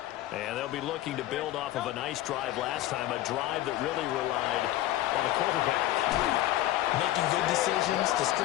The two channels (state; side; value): quieter; right; 14.7 dB